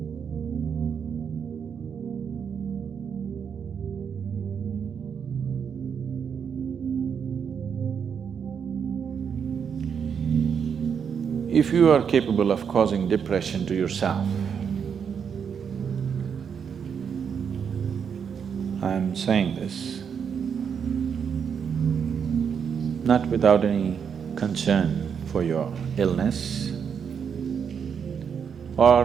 If you are capable of causing depression to yourself, I'm saying this not without any concern for your illness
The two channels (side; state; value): left; quieter; 7.1 dB